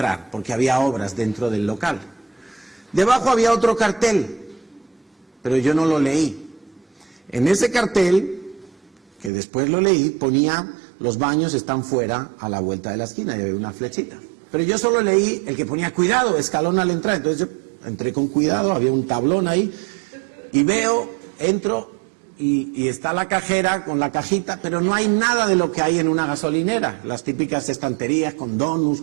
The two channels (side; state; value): left; drops out; at 9.3 s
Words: porque había obras dentro del local. Debajo había otro cartel, pero yo no lo leí. En ese cartel, que después lo leí, ponía: los baños están fuera a la vuelta de la esquina, y había una flechita. Pero yo solo leí el que ponía: cuidado, escalón al entrar. Entonces yo entré con cuidado, había un tablón ahí, y entro, y está la cajera con la cajita, pero no hay nada de lo que hay en una gasolinera. Las típicas estanterías con donuts,